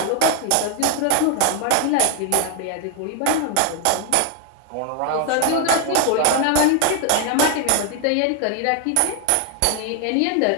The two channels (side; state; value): both; different; correlation 0.00